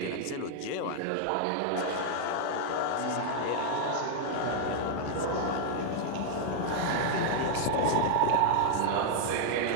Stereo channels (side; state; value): both; different; correlation -0.01